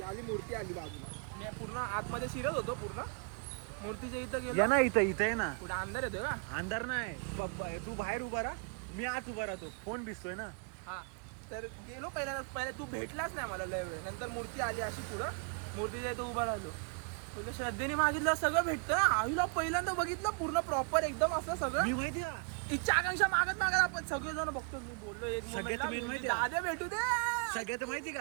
आली मूर्ती आली बाजूला, मी पूर्ण आतमध्ये शिरत होतो, पूर्ण मूर्तीच्या इथं या गेलो. ना इथं आहे ना. कुठं अंधार येतोय का? अंधार नाही, तू बाहेर उभा राहा, मी आत उभा राहतो, फोन भिजतोय ना. हा तर गेलो पहिले तू भेटलाच नाही मला लय वेळ, नंतर मूर्ती आली अशी पुढं, मूर्तीच्या इथं उभा राहिलो, तुला श्रद्धेने मागितलं सगळं भेटतं. आईला पहिल्यांदा बघितलं पूर्ण प्रॉपर एकदम असं सगळं. मी माहिती आहे इच्छा आकांक्षा मागत आपण सगळेजण बघतो. मी बोललो एक सगळ्यात main माहिती आहे? आधे भेटू दे. सगळ्यात माहिती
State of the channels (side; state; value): left; quieter; 37.4 dB